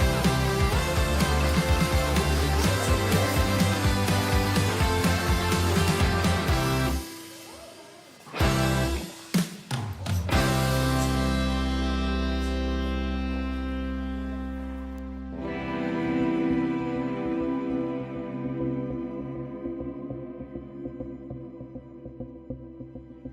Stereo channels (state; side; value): identical; both; correlation 1.00